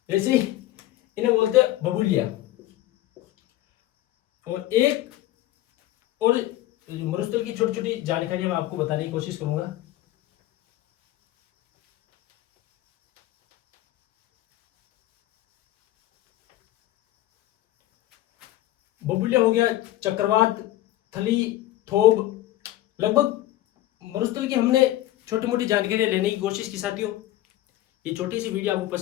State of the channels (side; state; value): right; quieter; 15.2 dB